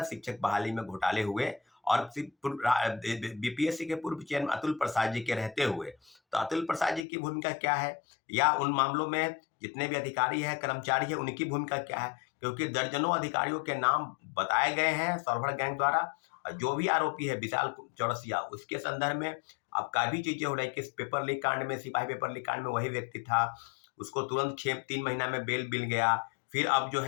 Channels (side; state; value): right; drops out; at 7.1 s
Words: शिक्षक बहाली में घोटाले हुए। और बीपीएससी के पूर्व चेयरमैन अतुल प्रसाद जी के रहते हुए, तो अतुल प्रसाद जी की भूमिका क्या है, या उन मामलों में जितने भी अधिकारी हैं, कर्मचारी हैं, उनकी भूमिका क्या है? क्योंकि दर्जनों अधिकारियों के नाम बताए गए हैं सॉल्वर गैंग द्वारा। जो भी आरोपी है विशाल चौरसिया, उसके संदर्भ में अब काफी चीजें हो रही कि इस पेपर लीक कांड में, सिपाही पेपर लीक कांड में वही व्यक्ति था, उसको तुरंत 3 महीना में बेल मिल गया। फिर अब जो